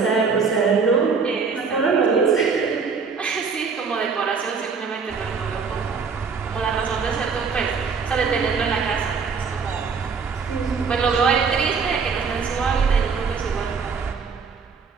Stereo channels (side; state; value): left; quieter; 5.4 dB